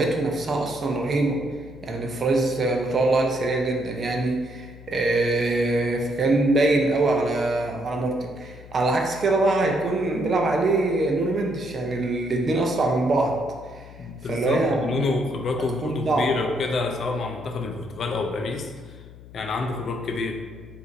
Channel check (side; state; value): left; noise; hum, 18 dB below the sound